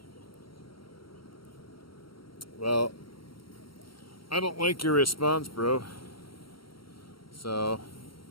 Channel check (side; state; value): right; late; 0.74 ms